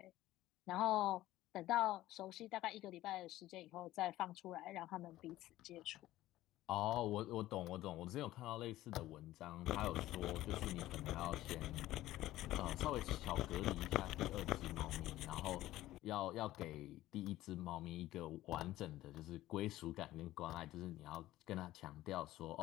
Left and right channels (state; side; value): quieter; right; 15.5 dB